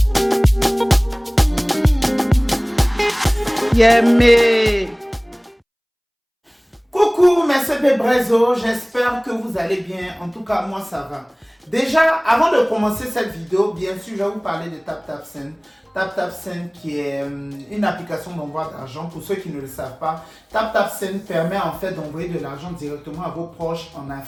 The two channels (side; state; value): both; identical; correlation 1.00